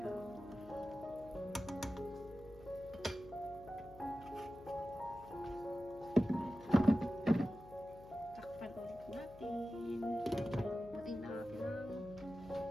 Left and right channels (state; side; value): noise; left; hum, 19 dB below the sound